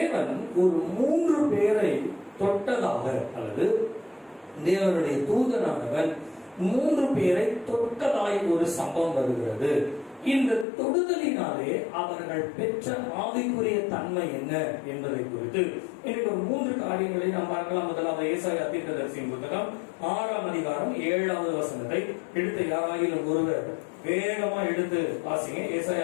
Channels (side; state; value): right; drops out; at 10.7 s